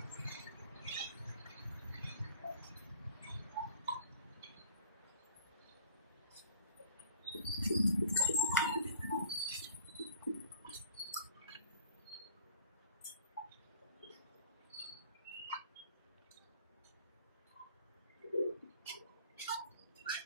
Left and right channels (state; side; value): inverted; both; correlation -0.49